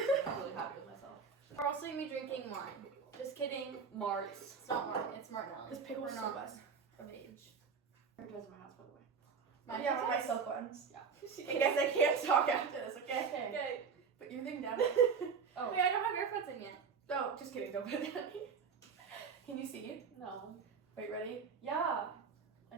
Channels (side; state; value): left; quieter; 5.8 dB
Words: I'm really happy with myself. We're also gonna be drinking wine. Just kidding. Marts. It's not wine. It's Martinelli. This pickle's We're so not good. of age. There goes my house, by the way. Yeah, my silk ones. Yeah. I guess I can't talk after this, okay? Okay. Put your thing down. Oh. Wait, I don't have earphones in yet. Oh, just kidding. Don't put it down. Can you see? No. Wait, ready? Yeah. I